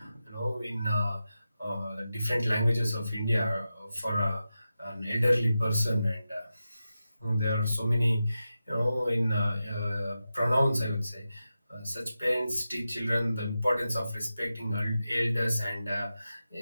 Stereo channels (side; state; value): both; inverted; correlation -0.91